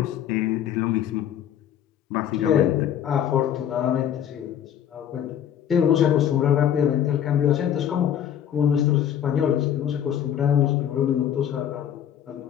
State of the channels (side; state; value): right; quieter; 9.8 dB